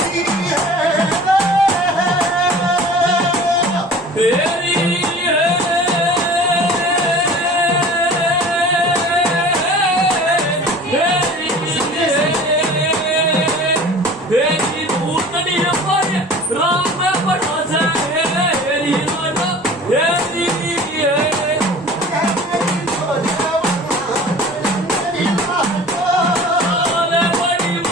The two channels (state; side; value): normal; both; correlation 0.43